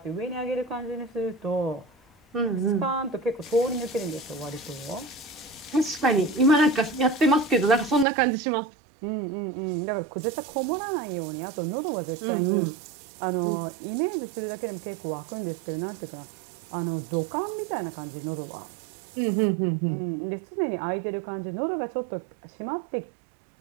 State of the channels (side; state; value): left; drops out; at 8.1 s